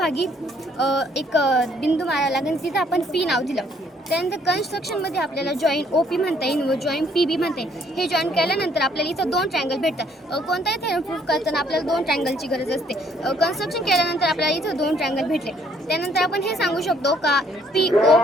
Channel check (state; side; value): normal; both; correlation 0.65